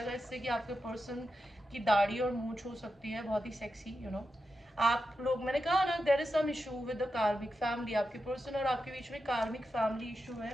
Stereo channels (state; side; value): normal; both; correlation 0.89